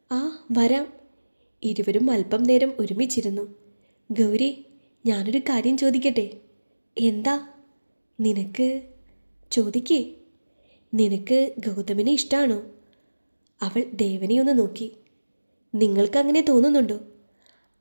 ആ വരാം. ഇരുവരും അല്പം നേരം ഒരുമിച്ചിരുന്നു. ഗൗരി, ഞാനൊരു കാര്യം ചോദിക്കട്ടെ? എന്താ? നിനക്ക് ചോദിക്കേ. നിനക്ക് ഗൗതമിനെ ഇഷ്ടമാണോ? അവൾ ദേവനെ ഒന്ന് നോക്കി. നിങ്ങൾക്കങ്ങനെ തോന്നുന്നുണ്ടോ?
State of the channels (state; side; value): inverted; both; correlation -1.00